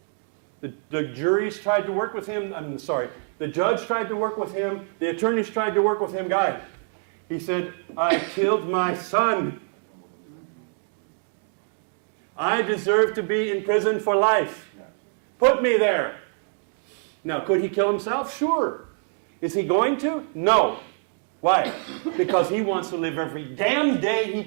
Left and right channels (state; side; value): silent; left; 56 dB below the other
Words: The juries tried to work with him. The judge tried to work with him. The attorneys tried to work with him. Guys, he said, I killed my son. I deserve to be in prison for life. Put me there. Now, could he kill himself? Sure. Is he going to? No. Why? Because he wants to live every damn day he